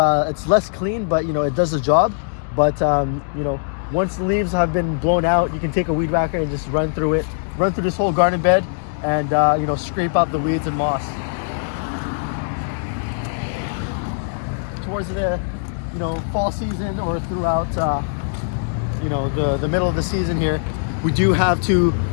clean, but you know, it does the job. But you know, once the leaves have been blown out, you can take a weed whacker and just run through this whole garden bed, and you know, scrape out the weeds and moss. Towards the fall season or throughout you know, the middle of the season here, we do have to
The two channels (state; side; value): silent; right; digital silence